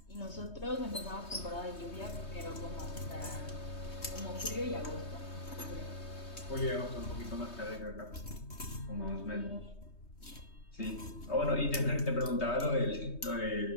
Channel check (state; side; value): late; right; 3.2 ms